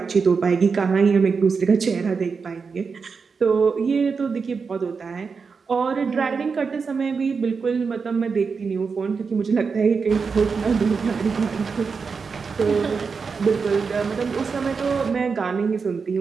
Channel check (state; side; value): quieter; left; 5.2 dB